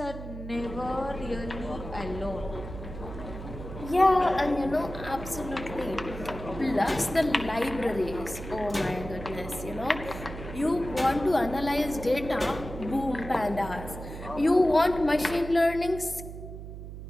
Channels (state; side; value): noise; right; hum, 10 dB below the sound